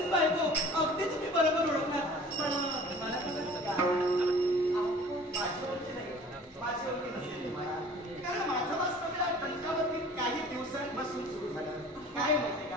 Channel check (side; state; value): both; normal; correlation 0.47